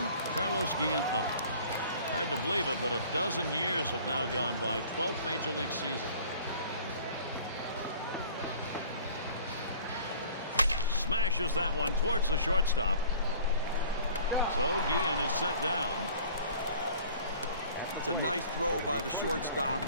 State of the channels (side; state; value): both; inverted; correlation -0.49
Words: Carlos Guillen up. Hard to believe it, but a dozen years have now gone by. 12th Major League season. Smashes that one towards the shortstop. So Guillen is set down. It's a nice throw by the shortstop,